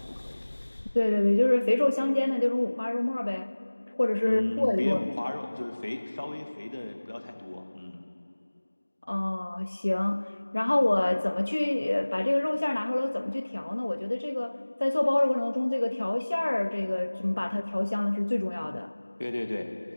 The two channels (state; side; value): inverted; both; correlation -1.00